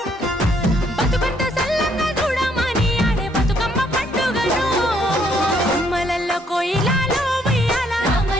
బతుకంత సల్లంగా చూడమని ఆడే బతుకమ్మ పండుగను బొమ్మలల్లో కోయిలాలు ఉయ్యాల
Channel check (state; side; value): normal; both; correlation 0.68